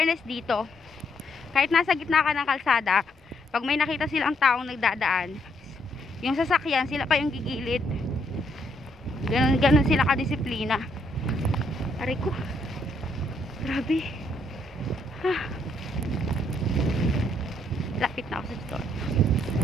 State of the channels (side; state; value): both; normal; correlation 0.72